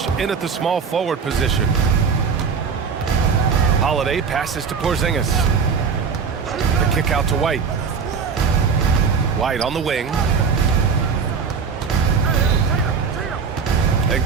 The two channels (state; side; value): quieter; left; 5.9 dB